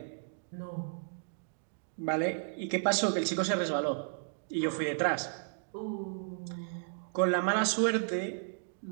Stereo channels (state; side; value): silent; left; digital silence